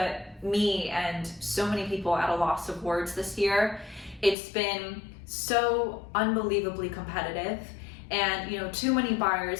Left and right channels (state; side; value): drops out; right; at 4.4 s